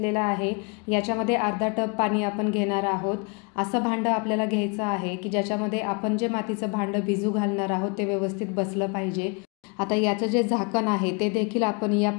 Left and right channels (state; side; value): quieter; right; 33.2 dB